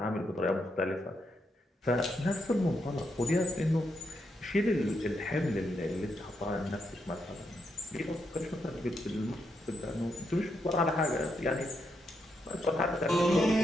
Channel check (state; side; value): normal; both; correlation 0.80